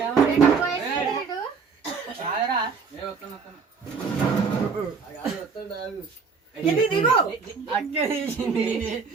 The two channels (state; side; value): quieter; left; 5.3 dB